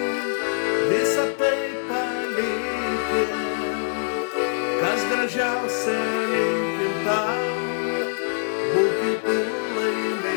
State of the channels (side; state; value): right; silent; 57 dB below the other